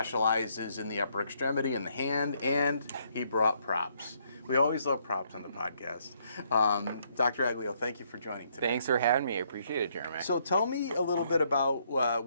in the upper extremity and the hand, and he brought props. We always love props on the podcast. Dr. Aglio, thank you for joining today. Thanks for having me. I appreciate it, Jeremy. So tell me a little bit about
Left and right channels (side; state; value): both; inverted; correlation -0.71